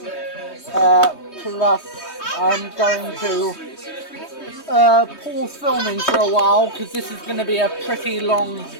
Plus, I'm going to pause filming for a while because this is going to be a pretty long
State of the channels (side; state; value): right; late; 3.2 ms